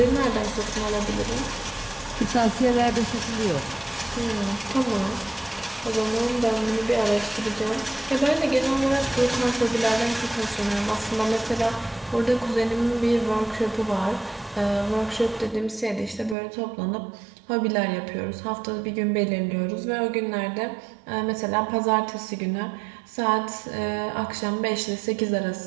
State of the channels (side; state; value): left; drops out; at 16.4 s